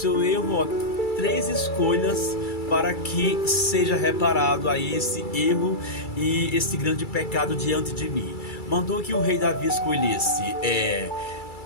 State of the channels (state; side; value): late; right; 2.3 ms